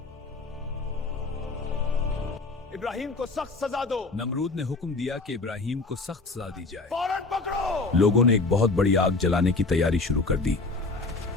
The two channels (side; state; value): right; quieter; 3.6 dB